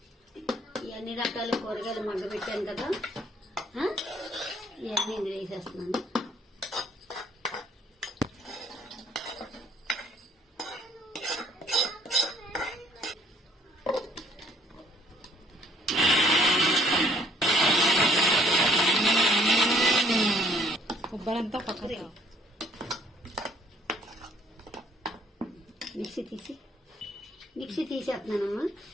ఇవన్నీ రకాల కూరగాయలు మగ్గబెట్టాను కదా, ఇవన్నీ ఇందులో వేసేస్తున్నాను. కొబ్బరంతా పక్కన మిక్సీ తీసేస్తున్నానమ్మా.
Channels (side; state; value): both; normal; correlation 0.61